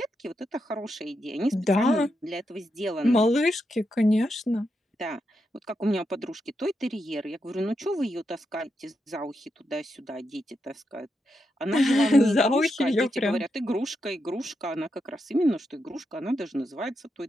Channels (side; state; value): both; normal; correlation 0.84